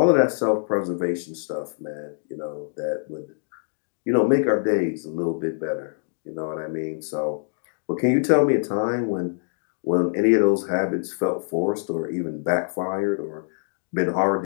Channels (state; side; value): silent; right; digital silence